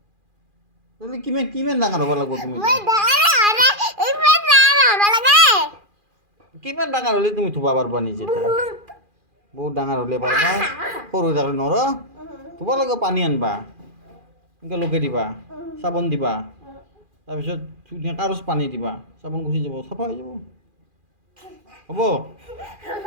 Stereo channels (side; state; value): left; late; 2.4 ms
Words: তুমি কিমান কিমান ডাঙৰ হ'ব লাগিব তুমি মই ডাঙৰ হ'লে ইমান ডাঙৰ হ'ব লাগে কিমান ডাঙৰ হ'লে তুমি ধুবা পাৰবা নিজে বহুত ডাঙৰ হ'লে পাৰবা সৰু থাকলে নৰ ধুব লাগিব পানী আনবা এনেকৈ লগাই দিবা চাবোন দিবা তাৰপিছত ধুনীয়া কাগজ পানী দিবা চাবোন গুচি যাব চাফা হৈ যাব হ'ব